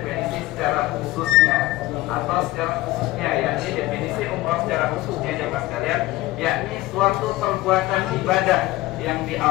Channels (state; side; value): quieter; right; 17.8 dB